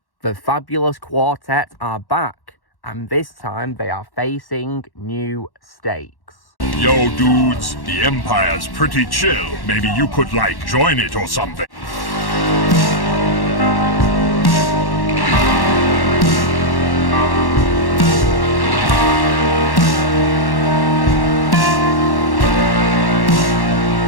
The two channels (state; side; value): late; right; 1.1 ms